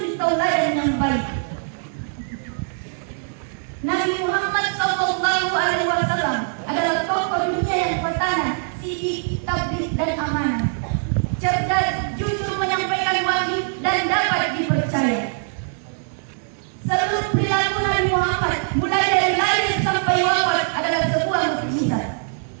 tauladan yang baik. Nabi Muhammad SAW adalah tokoh dunia yang pertama, sidik, tabligh dan amanah. Cerdas, jujur menyampaikan wahyu dan dapat dipercaya. Seluruh perilaku Nabi Muhammad mulai dari lahir sampai wafat adalah sebuah mukjizat.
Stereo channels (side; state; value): left; silent; 64 dB below the other